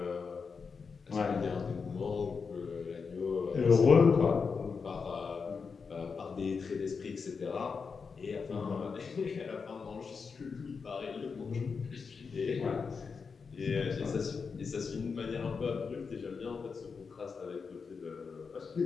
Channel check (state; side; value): quieter; right; 5.3 dB